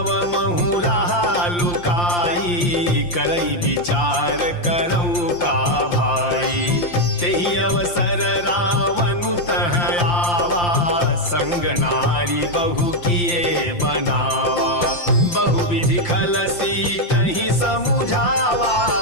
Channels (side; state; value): right; late; 5.7 ms